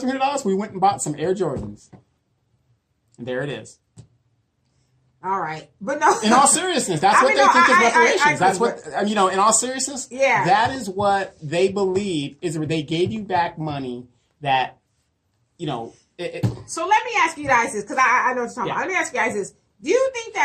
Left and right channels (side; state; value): both; identical; correlation 1.00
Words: We went and bought some Air Jordans. And there it is. All right. But no. In all seriousness, that's what they think is reparations. That's what, in all seriousness, that is what they believe is they gave you back money that, So let me ask you guys this, because I know what you're talking about. Let me ask you guys this. Do you think